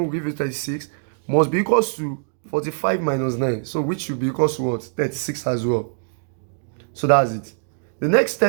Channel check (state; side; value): silent; left; digital silence